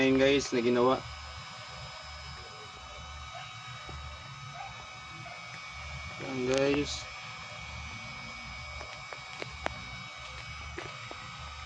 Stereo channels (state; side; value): identical; both; correlation 1.00